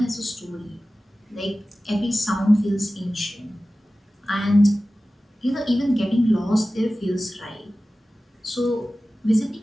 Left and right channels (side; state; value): both; normal; correlation 0.96